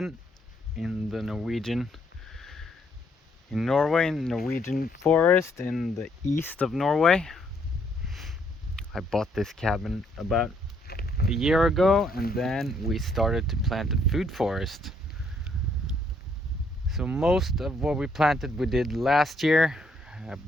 in the Norway, in Norwegian forest in the east of Norway. I bought this cabin about a year ago, and then we started to plant a food forest. So most of what we planted we did last year,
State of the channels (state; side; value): normal; both; correlation 0.70